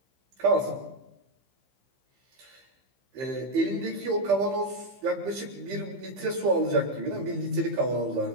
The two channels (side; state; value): left; late; 15 ms